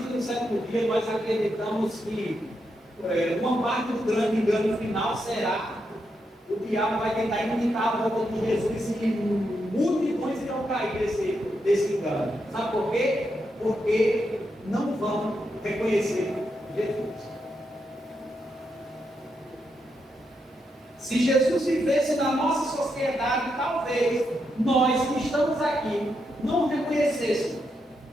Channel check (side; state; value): both; normal; correlation 0.83